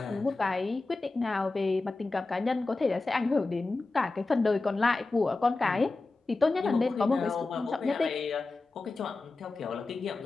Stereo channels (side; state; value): right; quieter; 3.4 dB